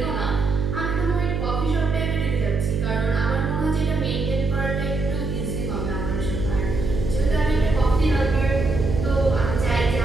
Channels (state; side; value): noise; right; hum, 2 dB below the sound